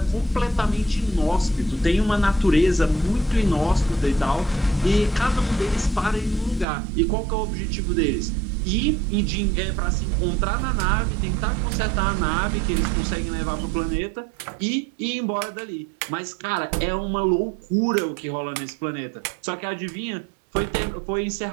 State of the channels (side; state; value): left; drops out; at 6.7 s